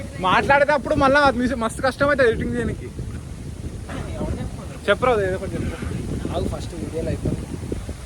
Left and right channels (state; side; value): identical; both; correlation 1.00